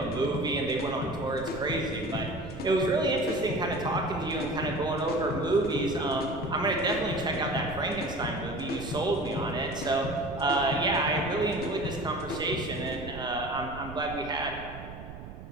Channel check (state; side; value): noise; right; rumble, 12 dB below the sound